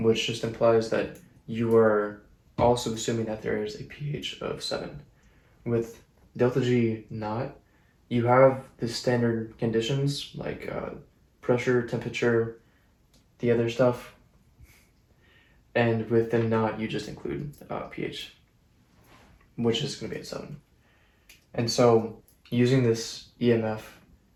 just implies that you are also assuming that there is a pH of 7. With delta G naught, you have the standard conditions like pressure, temperature, the other stuff, and with the naught, you just include pH, which is going to be at 7. And so using this EMF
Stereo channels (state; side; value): identical; both; correlation 1.00